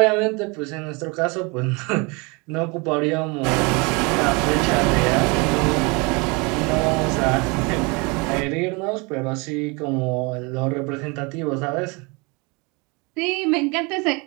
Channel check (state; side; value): quieter; left; 28.8 dB